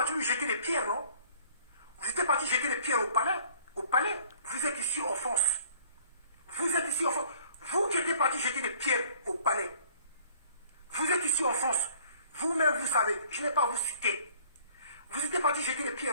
lui jeter des pierres, non? Vous étiez parti jeter des pierres au palais. Au palais. Vous êtes ici en France. Vous êtes ici en France. Vous qui étiez parti jeter des pierres au palais. Vous êtes ici en France. Vous-même, vous savez. Je n'ai pas à vous citer. Vous étiez parti jeter des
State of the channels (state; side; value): inverted; both; correlation -0.53